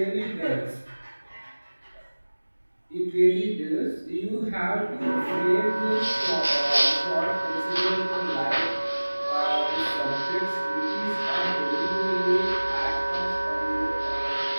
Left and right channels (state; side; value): inverted; both; correlation -1.00